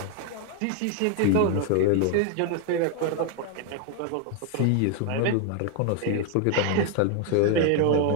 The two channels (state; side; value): different; both; correlation 0.00